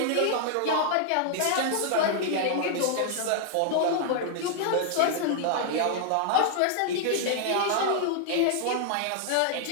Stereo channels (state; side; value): different; both; correlation -0.01